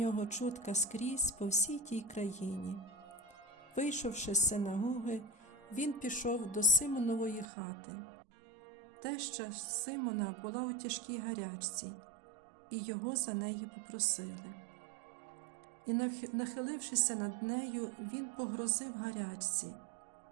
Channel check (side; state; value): left; drops out; at 7.5 s